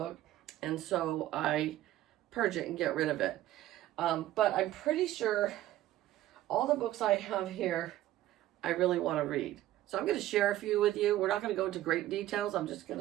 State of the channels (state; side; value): quieter; left; 14.3 dB